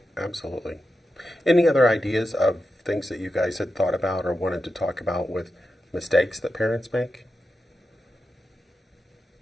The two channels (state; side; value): normal; both; correlation 0.90